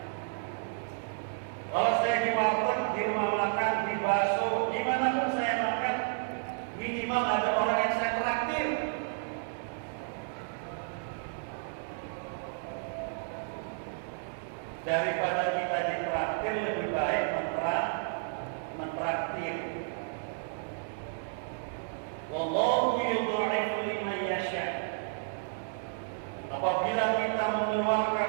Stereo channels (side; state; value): left; silent; digital silence